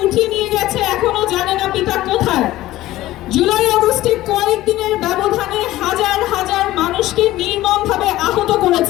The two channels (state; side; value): quieter; right; 16.0 dB